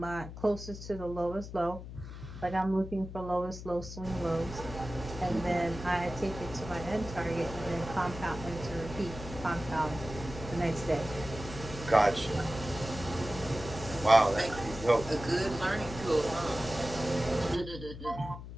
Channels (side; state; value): left; noise; hum, 11 dB below the sound